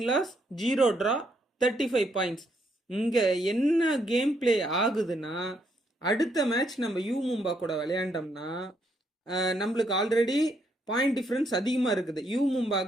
loss 0 draw 35 பாயிண்ட்ஸ். இங்கே என்ன கேம் பிளே ஆகுதுன்னா அடுத்த மேட்ச் நம்ம யூ மும்பா கூட விளையாண்டோம்னா நம்மளுக்கு ஆல்ரெடி பாயிண்ட் டிஃப்ரென்ஸ் அதிகமாக இருக்குது. யூ மும்பா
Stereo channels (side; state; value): both; normal; correlation 0.74